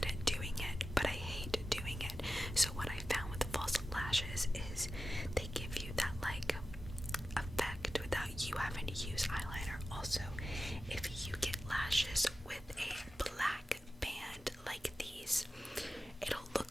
at doing it, but I hate doing it. So what I found with the false lashes is they give you that like effect without you having to use eyeliner. Also, if you get lashes with a black band like these, it'll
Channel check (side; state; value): both; normal; correlation 0.94